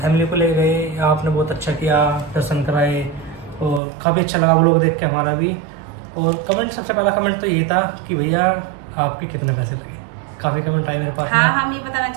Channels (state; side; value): drops out; left; at 3.8 s